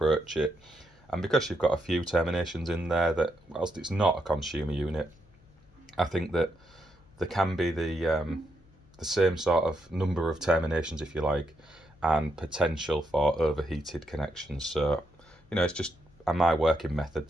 it. And because you've got a few terminations in there, that whilst it's not a consumer unit, I think that there can be the same sort of number of terminations, if you like, and potential for overheated connections. So, you know, it's just my working method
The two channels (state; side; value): noise; left; hum, 29 dB below the sound